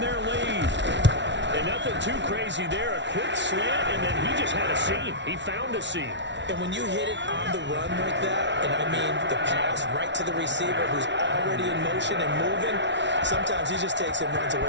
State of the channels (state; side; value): late; left; 0.52 ms